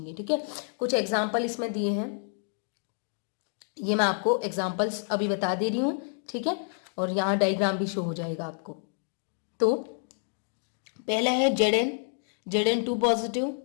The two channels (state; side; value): silent; right; 59 dB below the other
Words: ठीक है। कुछ एग्जाम्पल इसमें दिए हैं, ये मैं आपको एग्जाम्पल्स अभी बता दे रही हूं, ठीक है, और यहाँ डायग्राम भी शो हो जाएगा आपको। तो पहला है Zn2 positive,